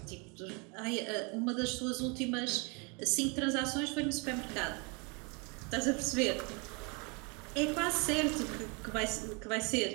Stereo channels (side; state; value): left; quieter; 31.6 dB